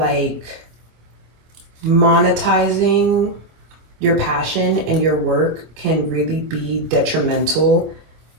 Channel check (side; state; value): left; late; 26 ms